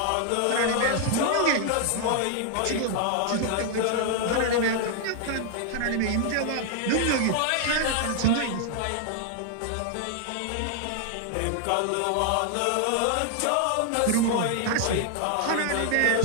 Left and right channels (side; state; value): both; different; correlation 0.00